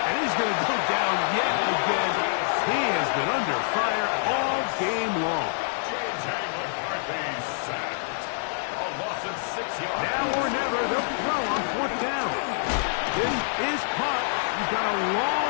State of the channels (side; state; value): right; silent; 61 dB below the other